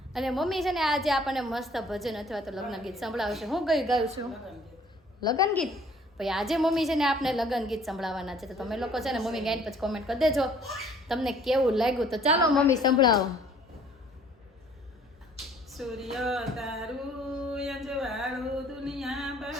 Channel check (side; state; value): both; normal; correlation 0.56